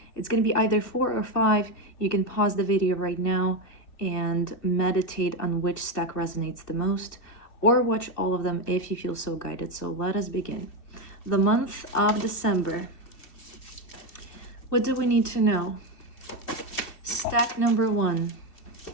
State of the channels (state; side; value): late; right; 2.7 ms